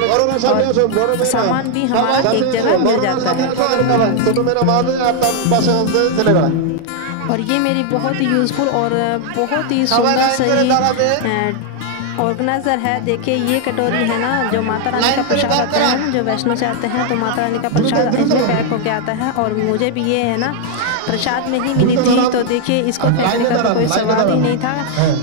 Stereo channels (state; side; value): different; both; correlation 0.00